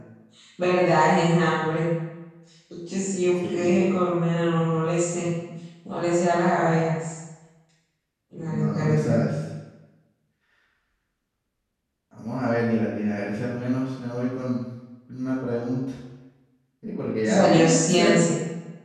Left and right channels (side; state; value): both; identical; correlation 1.00